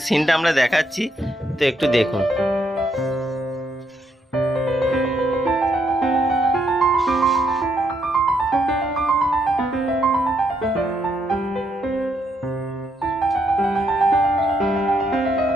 আমরা দেখাচ্ছি, তো একটু দেখুন।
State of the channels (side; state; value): both; normal; correlation 0.76